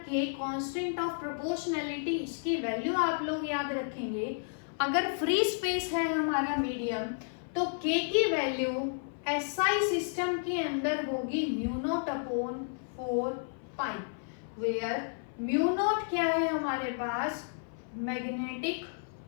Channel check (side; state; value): right; silent; 55 dB below the other